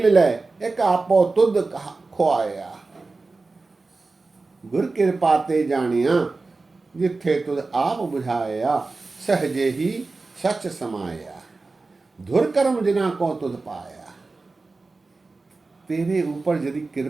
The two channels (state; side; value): quieter; left; 3.7 dB